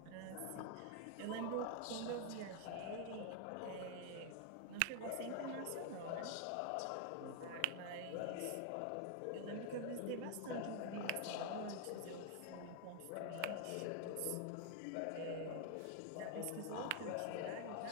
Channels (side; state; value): both; different; correlation 0.00